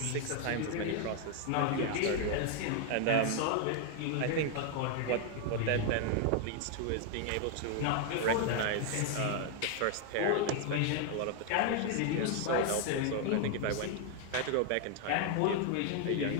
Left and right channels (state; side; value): different; both; correlation 0.01